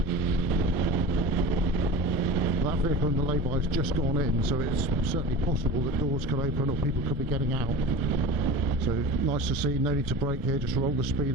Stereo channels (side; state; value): both; normal; correlation 0.33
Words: That vehicle in the lay-by has just gone in, so it's certainly possible that doors could open or people could be getting out. So nice to see, no need to brake here, just roll the speed